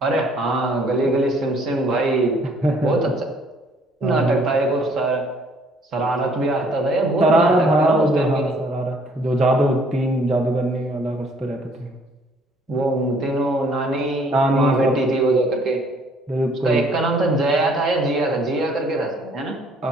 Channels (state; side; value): normal; both; correlation 0.61